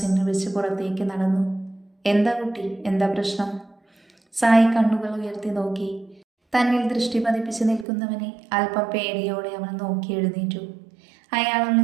വെച്ച് പുറത്തേക്ക് നടന്നു. എന്താ കുട്ടി, എന്താ പ്രശ്നം? സായി കണ്ണുകൾ ഉയർത്തി നോക്കി. തന്നിൽ ദൃഷ്ടി പതിപ്പിച്ച് നിൽക്കുന്നവനെ അല്പം പേടിയോടെ അവൾ നോക്കി എഴുന്നേറ്റു. അയാൾ അവനെ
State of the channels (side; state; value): left; drops out; at 7.9 s